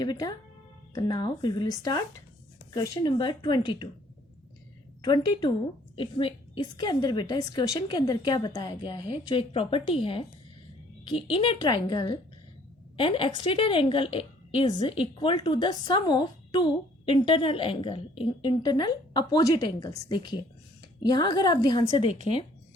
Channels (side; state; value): both; normal; correlation 0.59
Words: बेटा? तो now we will start question number 22. 22 इसके अंदर बेटा इस क्वेश्चन के अंदर क्या बताया गया है, जो एक प्रॉपर्टी है कि in a triangle an exterior angle is equal to the sum of two internal angle, internal opposite angles. देखिए यहाँ अगर आप ध्यान से देखें